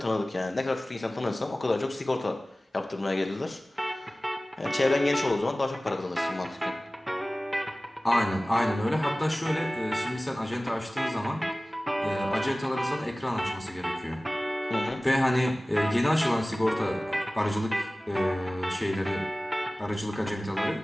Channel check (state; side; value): normal; both; correlation 0.98